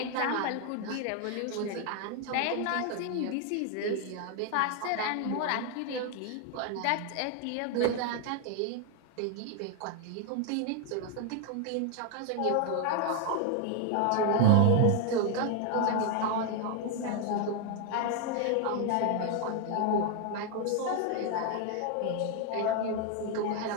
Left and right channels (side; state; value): both; different; correlation 0.00